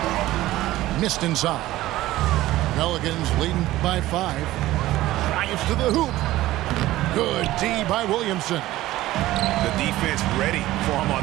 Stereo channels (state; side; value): quieter; left; 16.1 dB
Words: Missed inside. Pelicans leading by 5. Drives to the hoop. Good D by Williamson. The defense ready for him